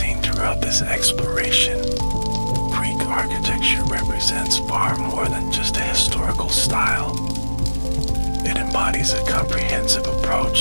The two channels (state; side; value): inverted; both; correlation -1.00